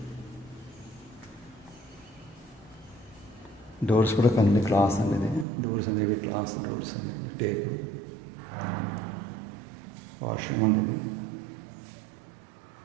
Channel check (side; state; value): left; drops out; at 5.5 s